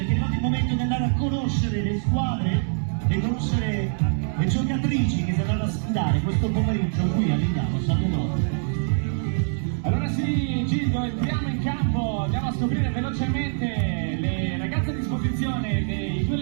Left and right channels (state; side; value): silent; left; digital silence